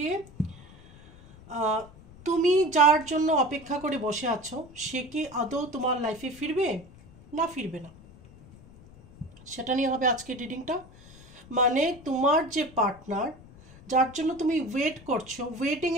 তুমি যার জন্য অপেক্ষা করে বসে আছো সে কি আদৌ তোমার লাইফে ফিরবে না ফিরবে না, সেটা নিয়ে হবে আজকের রিডিংটা। মানে তোমার যে পার্টনার যার জন্য তুমি ওয়েট করছো,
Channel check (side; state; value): left; noise; rumble, 21 dB below the sound